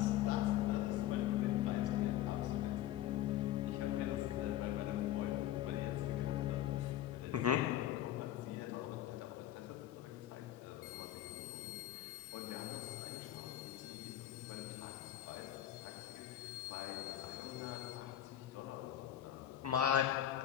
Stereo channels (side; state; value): right; quieter; 12.4 dB